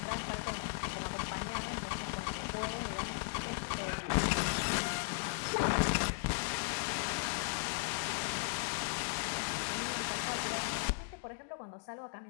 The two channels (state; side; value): silent; right; digital silence